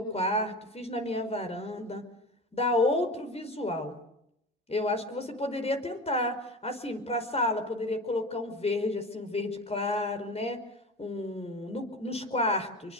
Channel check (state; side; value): normal; both; correlation 0.30